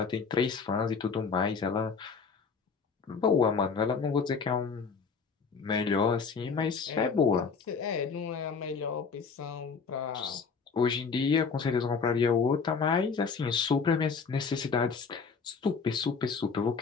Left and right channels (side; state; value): right; quieter; 5.3 dB